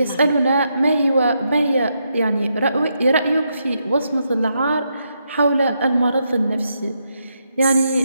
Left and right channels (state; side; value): inverted; both; correlation -0.81